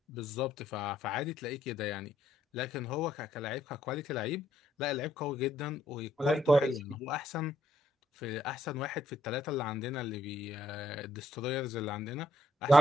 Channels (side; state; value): both; normal; correlation 0.72